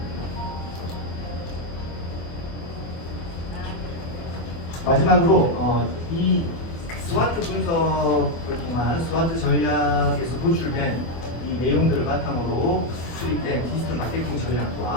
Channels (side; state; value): right; late; 24 ms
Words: 마지막으로 이 스와트 분석을 통한 스와트 전략에서 도출된 이 내용들을 바탕으로 수립된 디지털 마케팅